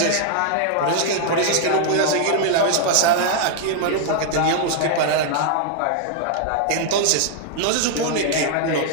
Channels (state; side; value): different; both; correlation 0.00